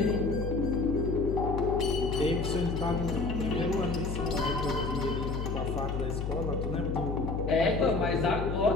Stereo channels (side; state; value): left; noise; hum, 3 dB below the sound